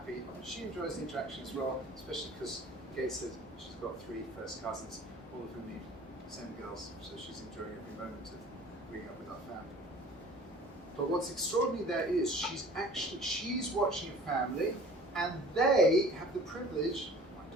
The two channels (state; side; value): normal; both; correlation 0.46